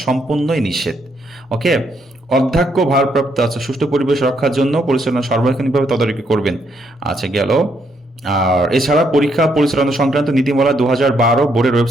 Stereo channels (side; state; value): both; normal; correlation 0.74